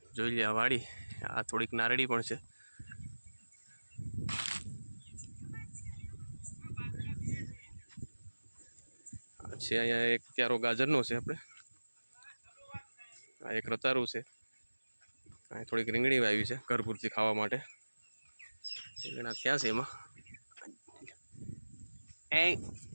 જોઈ લે આ વાડી. આ થોડીક નારળી પણ છે. છે અહીંયા એક ક્યારો ગાજરનો છે આપણે. આ એક રતારું છે. અહીં થોડીક રીંગણી વાવી છે ઘર પૂરતી ખાવા માટે. રીંગણા થયા છે એમાં.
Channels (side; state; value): both; inverted; correlation -1.00